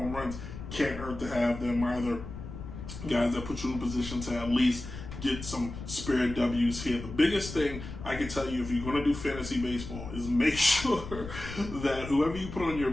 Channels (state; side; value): noise; left; rumble, 10 dB below the sound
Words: runs, can't hurt to have them either. Guys that put you in position to at least get some spare W's here. The biggest thing I can tell you if you're going to do fantasy baseball is make sure that whoever you put on your